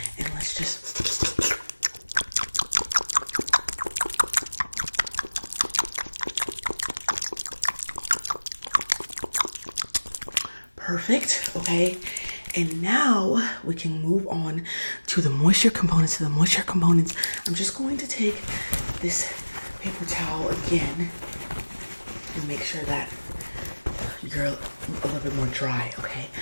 and let's just perfect. Okay, and now we can move on to the moisture components. I'm just going to take this paper towel again, and make sure that you're a little bit more dry, okay?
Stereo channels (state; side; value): inverted; both; correlation -1.00